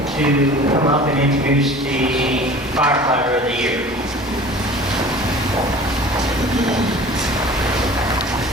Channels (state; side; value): normal; both; correlation 0.43